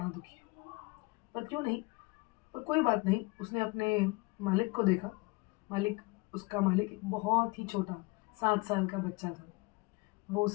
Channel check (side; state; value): right; quieter; 25.5 dB